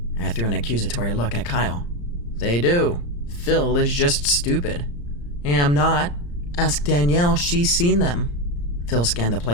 I threw an accusatory look at Kyle. They do. Phil is just stupid. Am not. Ask Danielle, she's seen them. Phil scanned the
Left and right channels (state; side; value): late; right; 34 ms